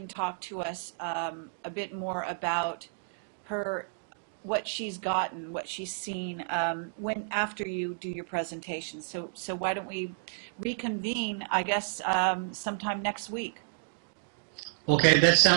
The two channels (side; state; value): left; silent; digital silence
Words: talk to us a bit more about her, what she's gotten, what she's seen when after you do your presentation. So why don't we reconvene, I guess, sometime next week? Okay, that